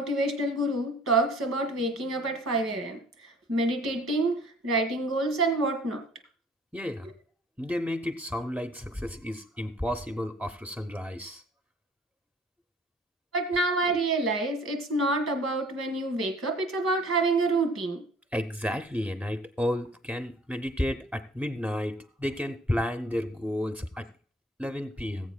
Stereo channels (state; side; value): normal; both; correlation 0.53